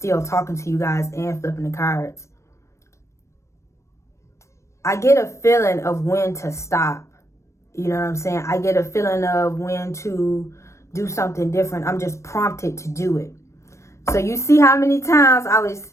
talking to you guys and flipping the cards. I get a feeling of when to stop. You know what I'm saying? I get a feeling of when to do something different. I'm just prompted to do it. So you see how many times I was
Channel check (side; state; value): right; late; 0.14 ms